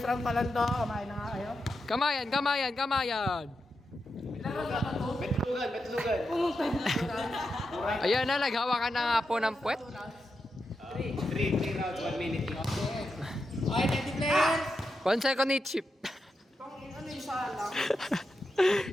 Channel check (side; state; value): both; normal; correlation 0.87